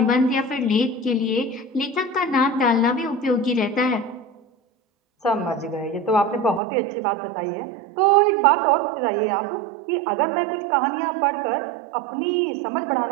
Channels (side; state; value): left; drops out; at 6.6 s